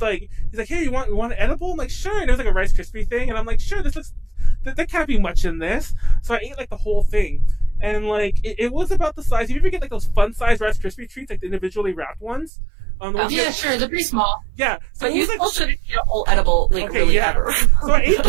like, hey, you want an edible? I'm like, sure. And it was like a Rice Krispie thing, and I'm like, sure. This looks there can't be much in this. So I ate like the whole thing, and like it was about the size. You ever get like those fun size Rice Krispie treats, like the individually wrapped ones? Yeah, sure. They're pretty small. Yeah. So but you still shouldn't eat a whole edible, like, okay, really yeah. ever. So I ate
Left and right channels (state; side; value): drops out; left; at 12.5 s